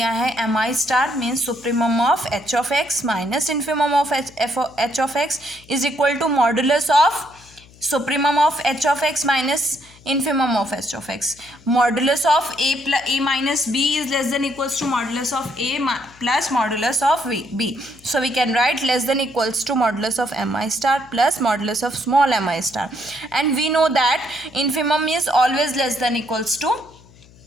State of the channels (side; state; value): left; noise; hum, 25 dB below the sound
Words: है M I star means supremum of H of X minus infimum of H of X is equal to modulus of supremum of H of X minus infimum of h of x. Modulus of a minus b is less than equals to modulus of a plus modulus of b. So we can write less than equals to modulus of mi star plus modulus of small mi star. And we know that infimum is always less than equals to